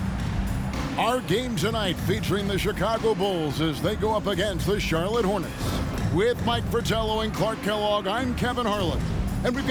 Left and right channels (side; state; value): both; identical; correlation 1.00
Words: Our game tonight featuring the Chicago Bulls as they go up against the Charlotte Hornets. With Mike Fratello and Clark Kellogg, I'm Kevin Harlan. And we've